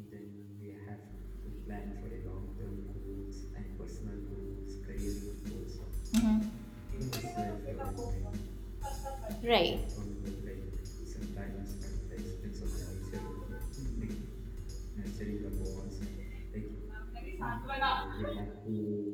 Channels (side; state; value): both; identical; correlation 1.00